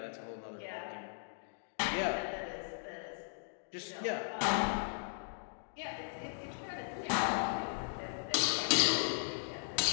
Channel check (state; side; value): silent; right; digital silence